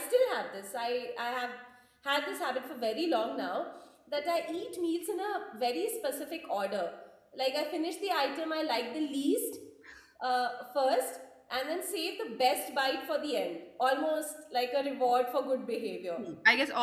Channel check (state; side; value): identical; both; correlation 1.00